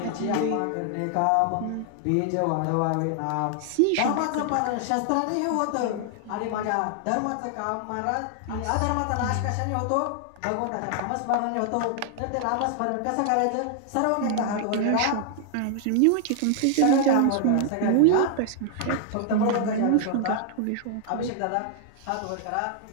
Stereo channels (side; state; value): both; different; correlation 0.00